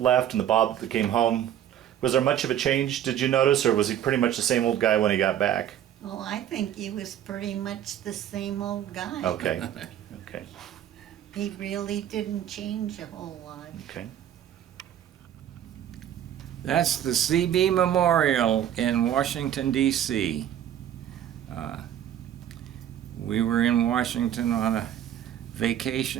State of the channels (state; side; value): quieter; left; 10.6 dB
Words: left and the Bob that came home? Was there much of a change, did you notice, or was he pretty much the same old guy when he got back? Oh, I think he was pretty much the same old guy. Okay. Okay. He really didn't change a whole lot. Okay. That's the CB Memorial in Washington, D.C. We were in Washington on a